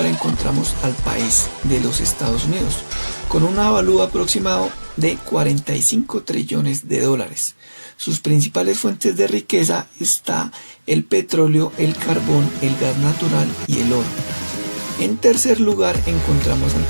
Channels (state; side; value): inverted; both; correlation -1.00